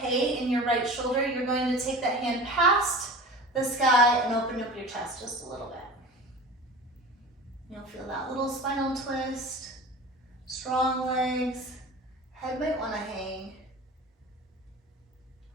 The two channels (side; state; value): both; normal; correlation 0.36